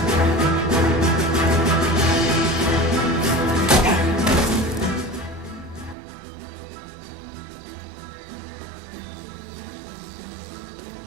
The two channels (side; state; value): left; drops out; at 6.0 s